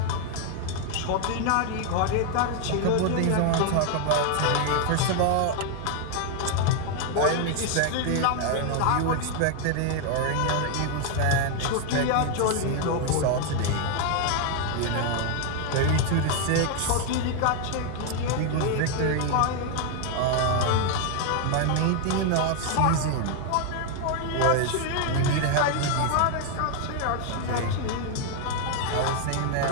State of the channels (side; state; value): both; different; correlation 0.00